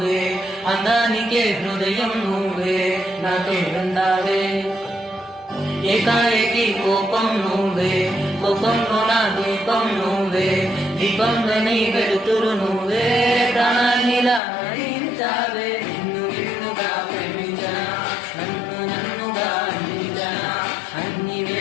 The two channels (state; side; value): drops out; right; at 14.4 s